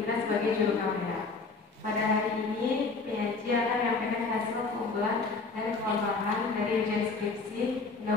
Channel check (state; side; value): quieter; right; 4.1 dB